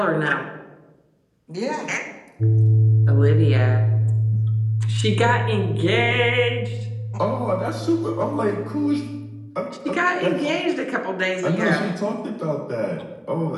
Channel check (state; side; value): identical; both; correlation 1.00